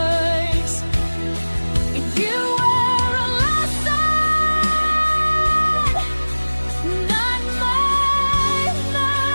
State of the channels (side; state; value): both; inverted; correlation -1.00